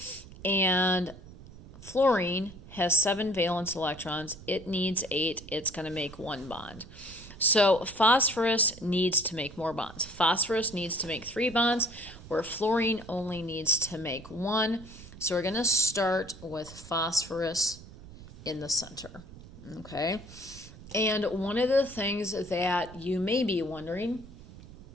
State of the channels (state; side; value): noise; right; rumble, 17 dB below the sound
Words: And fluorine has 7 valence electrons. It needs 8. It's going to make 1 bond. So phosphorus needs to make more bonds. Phosphorus needs to make 3 bonds, where fluorine only needs to make 1. So we're going to start with phosphorus in the center. Okay? And one of the things that you may be wondering